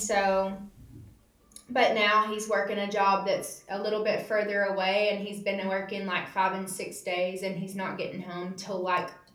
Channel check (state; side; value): identical; both; correlation 1.00